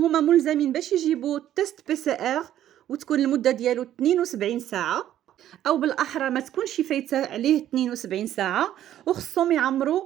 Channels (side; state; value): left; quieter; 11.8 dB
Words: ملزمين باش يجيبوا تيست بي سي ار، وتكون المده ديالو 72 ساعه، او بالاحرى ما تكونش فايته عليه 72 ساعه. وخصهم